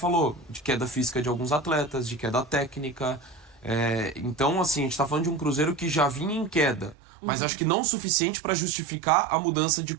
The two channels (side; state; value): left; drops out; at 7.0 s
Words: de queda física de alguns atletas, de queda técnica. Então, assim, a gente tá falando de um Cruzeiro que já vinha em queda, mas acho que não o suficiente pra justificar a mudança de